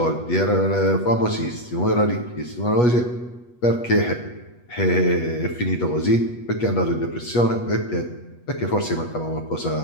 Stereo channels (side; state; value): right; late; 8.2 ms